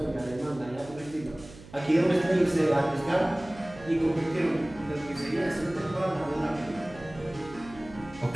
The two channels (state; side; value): noise; right; hum, 19 dB below the sound